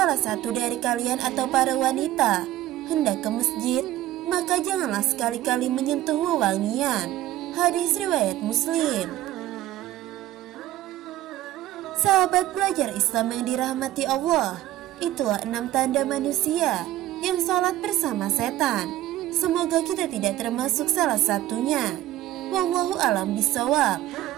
satu dari kalian atau para wanita hendak ke masjid, maka janganlah sekali-kali menyentuh wewangian. Hadis riwayat Muslim. Sahabat belajar Islam yang dirahmati Allah, itulah 6 tanda manusia yang sholat bersama setan. Semoga kita tidak termasuk salah satunya. Wallahu a'lam bishawab.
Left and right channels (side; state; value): left; quieter; 14.4 dB